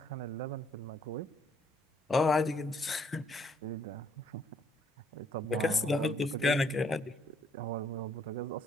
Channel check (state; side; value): normal; both; correlation 0.67